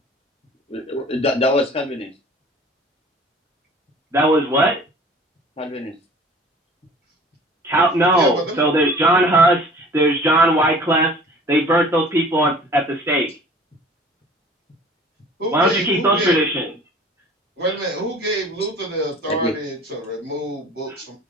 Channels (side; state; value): both; normal; correlation 0.47